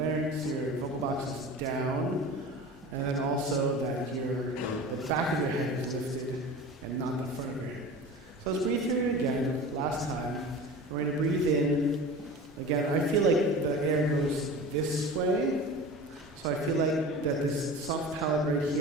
larynx, your vocal box is down, and then also that the back of your head is lifted and not the front of your head. So let's breathe through it again, last time. We're going to breathe in. Again, I feel like the air goes this way. So I feel like that this soft palate right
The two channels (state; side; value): normal; both; correlation 0.35